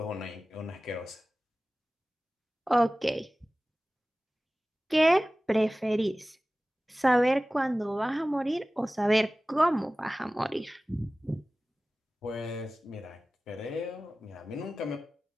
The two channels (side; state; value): both; normal; correlation 0.97